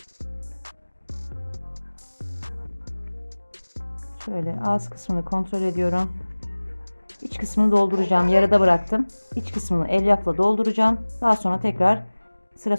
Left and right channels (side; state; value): both; inverted; correlation -1.00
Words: Şöyle ağız kısmını kontrol ediyorum. İç kısmını dolduracağım. Yarıda bıraktım. İç kısmını elyafla dolduracağım. Daha sonra tekrar sıra